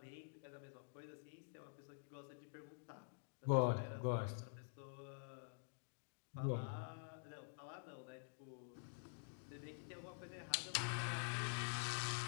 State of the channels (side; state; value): right; silent; digital silence